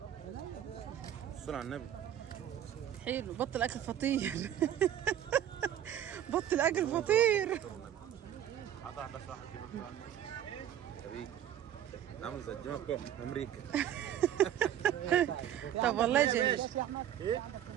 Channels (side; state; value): left; quieter; 10.5 dB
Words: الصلاة على النبي. حلو. بطل اكل فطير. بطل اكل فطير. قطع بس واحد كده. عامل زي الجماعه بتوع امريكا. طب والله جميل.